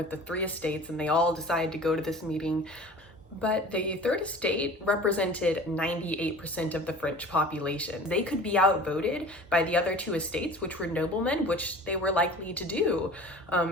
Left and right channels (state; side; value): normal; both; correlation 0.41